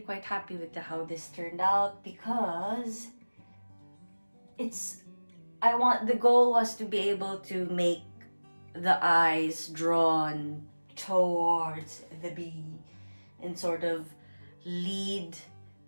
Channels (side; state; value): both; inverted; correlation -1.00